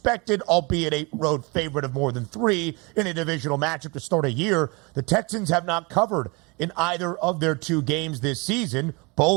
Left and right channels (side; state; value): left; quieter; 28.0 dB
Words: albeit a road favorite of more than 3 in a divisional matchup to start a year, the Texans have not covered in either of their 2 games this season,